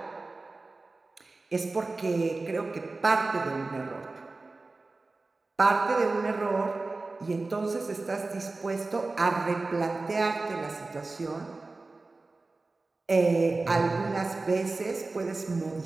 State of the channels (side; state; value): left; quieter; 3.5 dB